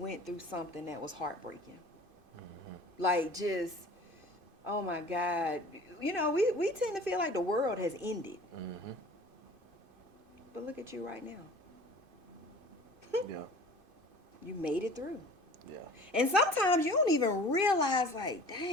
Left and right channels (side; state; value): left; late; 2.5 ms